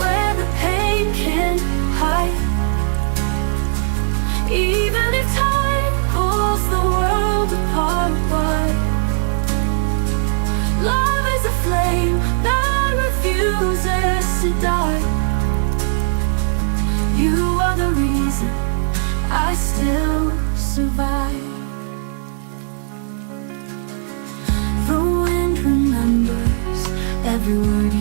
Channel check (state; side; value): silent; left; 64 dB below the other